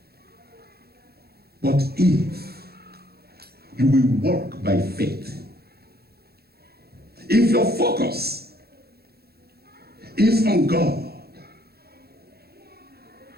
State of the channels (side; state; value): left; late; 0.46 ms